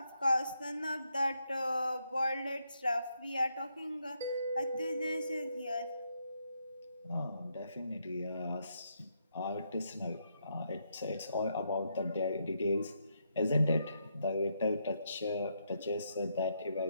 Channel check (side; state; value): both; inverted; correlation -0.78